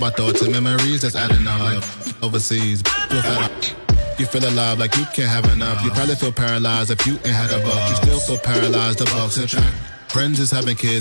thoughts and memories that's adding up. Like overseas, you feel alive like you can't have enough. You probably feel paralyzed if you ain't had a buck. You still feel paralyzed. The bucks and track. Friends is having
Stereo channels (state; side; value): inverted; both; correlation -1.00